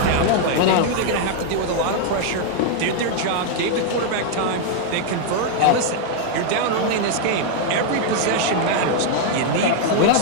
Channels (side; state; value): both; different; correlation 0.00